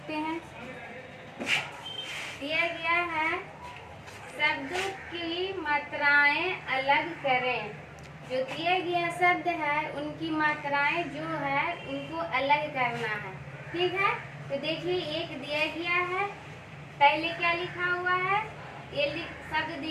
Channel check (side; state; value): both; identical; correlation 1.00